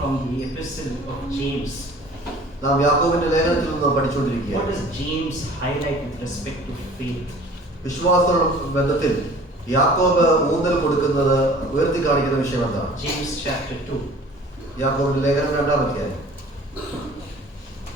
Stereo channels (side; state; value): both; normal; correlation 0.47